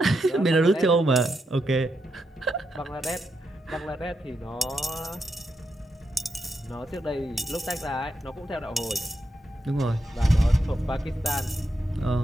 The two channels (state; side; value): normal; both; correlation 0.84